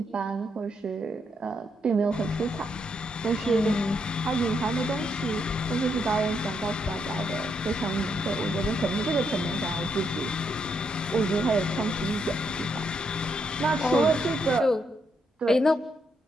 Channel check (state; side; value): normal; both; correlation 0.78